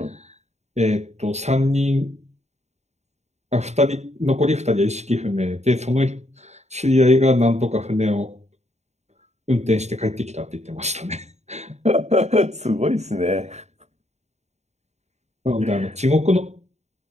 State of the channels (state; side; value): late; left; 0.32 ms